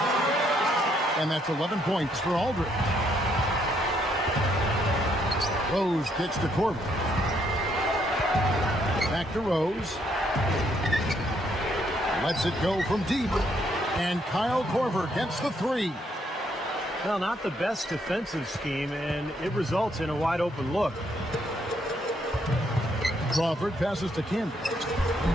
And that's 11 points for Aldridge. Rose kicks to Corbin. Back to Rose. Lets it go from deep. And Kyle Korver gets the three. Well, not the best defensive scheme, and it results in a wide open look. Crawford passes to Camby.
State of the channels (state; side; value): normal; both; correlation 0.72